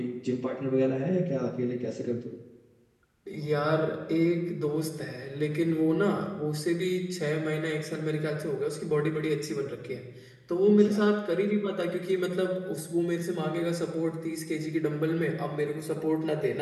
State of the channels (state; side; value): identical; both; correlation 1.00